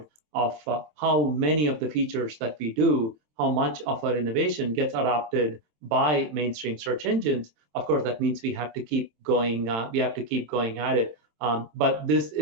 of how many of the features that we do, how much of our innovation gets adopted by mainstream search engines. Of course, that means we have to keep going. We have to keep going at it. But this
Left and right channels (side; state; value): left; late; 27 ms